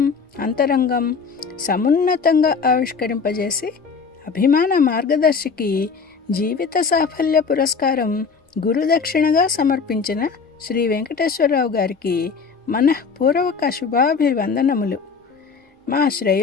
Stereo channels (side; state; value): right; quieter; 5.3 dB